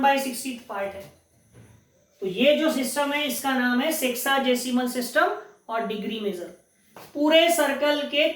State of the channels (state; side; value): identical; both; correlation 1.00